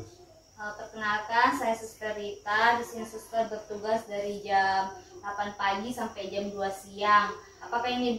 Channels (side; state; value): both; identical; correlation 1.00